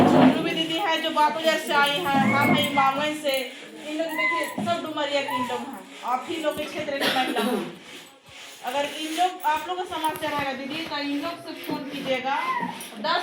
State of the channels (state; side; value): identical; both; correlation 1.00